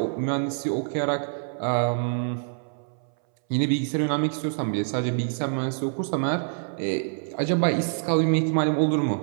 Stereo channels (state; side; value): silent; left; 61 dB below the other